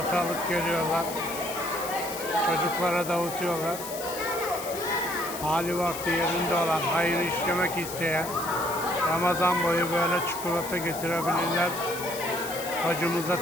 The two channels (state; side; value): noise; left; hiss, 10 dB below the sound